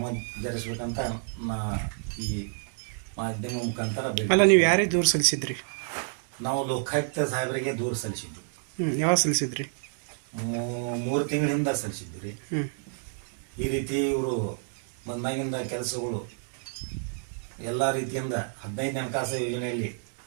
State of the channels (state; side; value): silent; left; digital silence